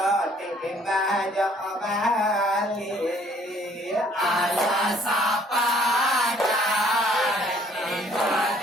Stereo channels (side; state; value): both; normal; correlation 0.60